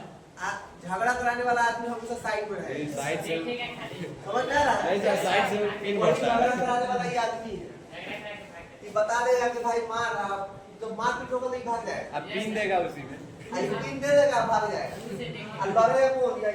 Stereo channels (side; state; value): both; identical; correlation 1.00